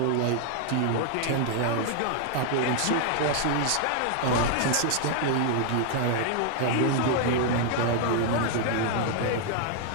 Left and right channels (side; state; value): both; different; correlation 0.00